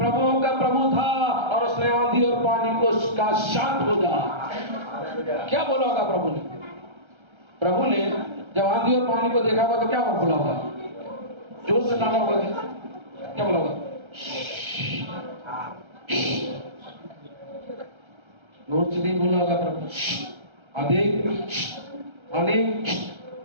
का प्रभु था, और उसने आंधी और पानी को का शांत हो जा। क्या बोला होगा प्रभु ने? प्रभु ने जब आंधी और पानी को देखा होगा तो क्या बोला होगा? जोर से नामा होगा, क्या बोला होगा? जोर से नहीं बोला होगा प्रभु। आंधी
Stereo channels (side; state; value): left; late; 1.3 ms